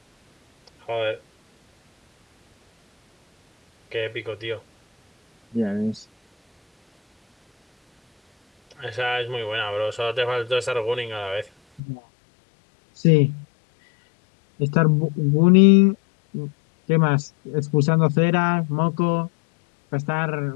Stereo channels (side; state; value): right; drops out; at 11.8 s